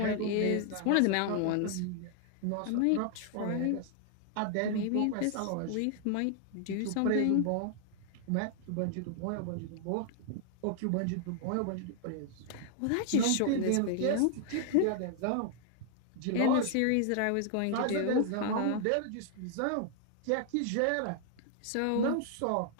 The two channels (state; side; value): different; both; correlation 0.00